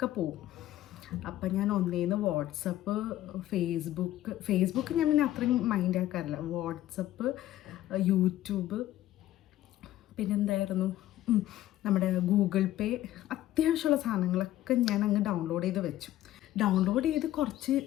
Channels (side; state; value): right; quieter; 14.0 dB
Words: പോവും. അപ്പം ഞാൻ ഒന്നേന്ന് വാട്സപ്പ്, ഫേസ്ബുക്ക് ഞാൻ പിന്നെ അത്രയും മൈൻഡ് ആക്കാറില്ല. വാട്സപ്പ്, യൂട്യൂബ്, പിന്നെന്തായിരുന്നു നമ്മുടെ ഗൂഗിൾ പേ, അത്യാവശ്യമുള്ള സാധനങ്ങളൊക്കെ ഞാൻ അങ്ങ് ഡൗൺലോഡ് ചെയ്ത് വെച്ചു. ഡൗൺലോഡ് ചെയ്ത്